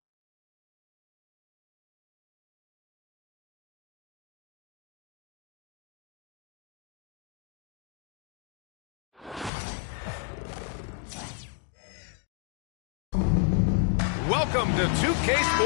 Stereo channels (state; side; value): drops out; right; at 9.5 s